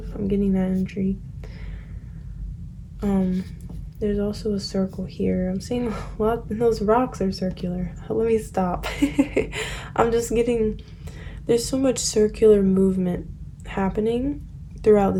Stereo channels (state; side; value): identical; both; correlation 1.00